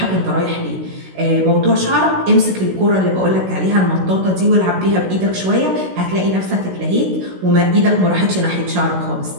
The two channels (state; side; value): late; left; 16 ms